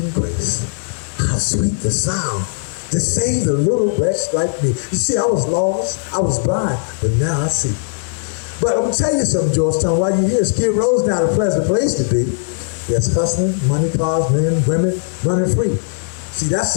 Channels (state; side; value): silent; right; 67 dB below the other